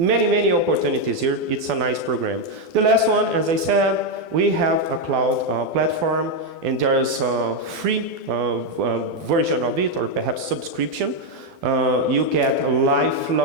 opportunities here. It's a nice program. The last one, as I said, we have a cloud platform, and there's a free version of it, or perhaps subscription. You get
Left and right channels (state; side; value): late; left; 12 ms